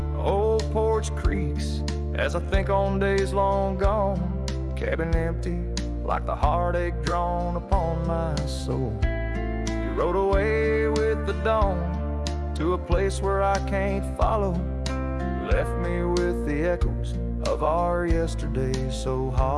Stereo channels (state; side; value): identical; both; correlation 1.00